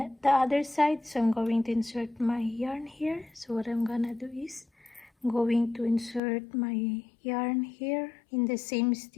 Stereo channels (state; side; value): drops out; right; at 6.2 s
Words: other side. So I'm going to insert my yarn here. So what I'm gonna do is I'm going to insert my yarn here in the same